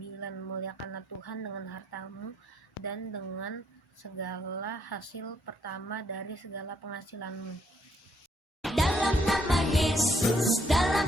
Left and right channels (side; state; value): both; normal; correlation 0.71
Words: muliakanlah Tuhan dengan hartamu dan dengan segala hasil pertama dari segala penghasilanmu. Dalam nama Yesus, dalam